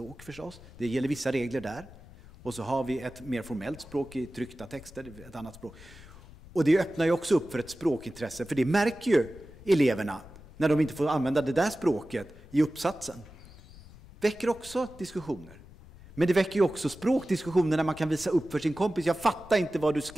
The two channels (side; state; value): left; noise; rumble, 20 dB below the sound